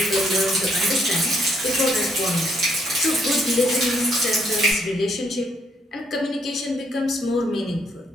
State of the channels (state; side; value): normal; both; correlation 0.71